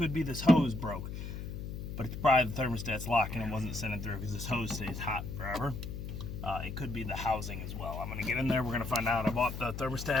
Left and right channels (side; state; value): left; noise; hum, 7 dB below the sound